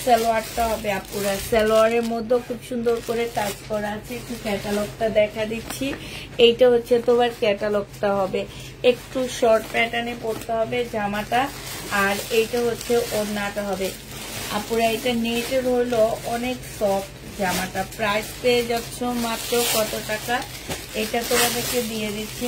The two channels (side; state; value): both; identical; correlation 1.00